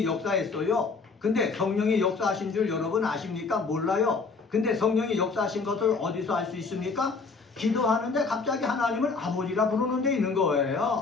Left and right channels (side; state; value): right; quieter; 4.4 dB